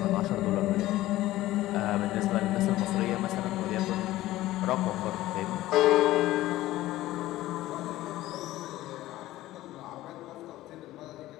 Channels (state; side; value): quieter; right; 16.0 dB